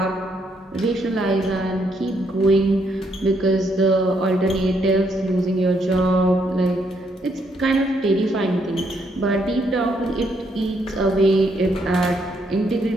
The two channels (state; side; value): normal; both; correlation 0.74